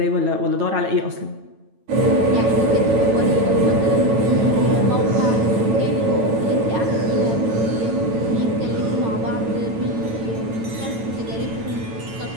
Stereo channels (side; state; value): left; late; 9.0 ms